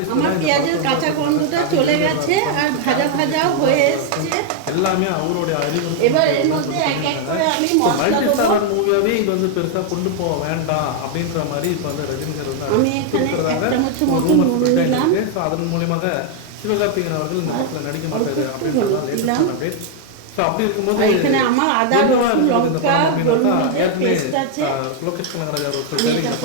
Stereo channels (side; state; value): both; different; correlation 0.00